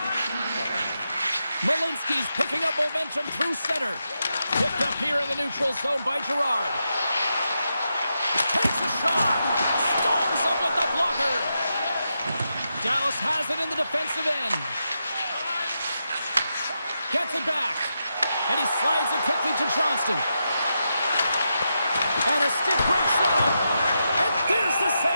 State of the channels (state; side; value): inverted; both; correlation -0.86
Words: Malinsky's picking up momentum through center. Picked up here in the neutral zone by Girard. Takes a shot. Storms up with the blocker. Dallas has it in the defensive end. Gets it back. And he slides it quickly to Johnston. And a stick break setup. And there's the